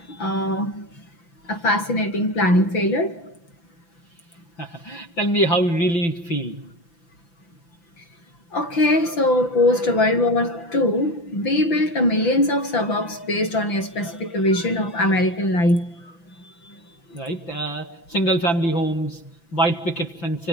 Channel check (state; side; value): late; right; 5.9 ms